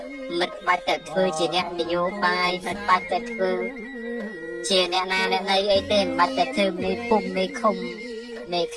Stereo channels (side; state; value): both; identical; correlation 1.00